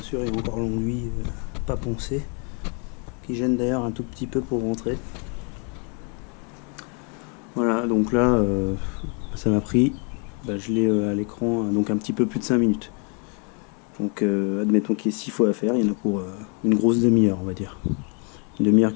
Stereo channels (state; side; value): quieter; right; 36.7 dB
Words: sûr, il y a encore l'enduit pas poncé, qui gêne d'ailleurs un tout petit peu pour rentrer. Voilà, donc là, ça m'a pris, je l'ai à l'écran, donc un petit peu plus de 5 minutes. Donc admettons qu'il y ait 6 fois à faire, il y en a pour une grosse demi-heure, on va dire. Une demi-heure,